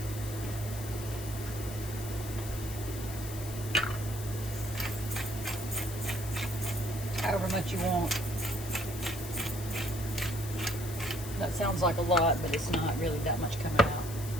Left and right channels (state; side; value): noise; left; hiss, 11 dB below the sound